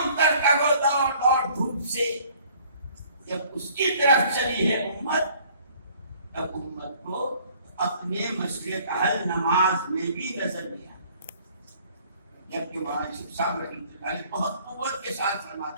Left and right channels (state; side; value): inverted; both; correlation -0.56